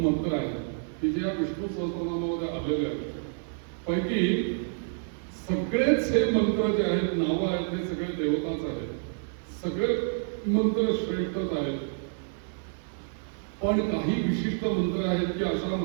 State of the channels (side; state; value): left; silent; digital silence